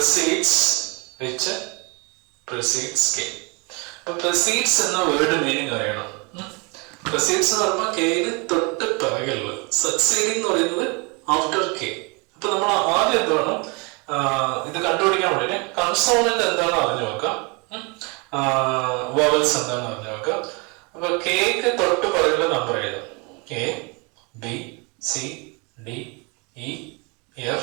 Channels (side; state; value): left; quieter; 30.6 dB